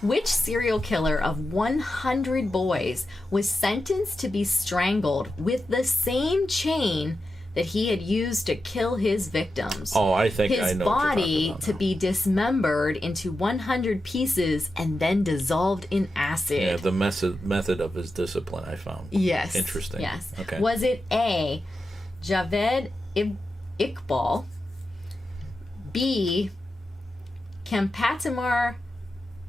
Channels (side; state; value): both; normal; correlation 0.90